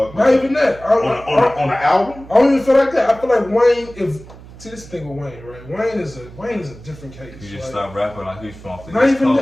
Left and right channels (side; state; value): right; noise; hum, 18 dB below the sound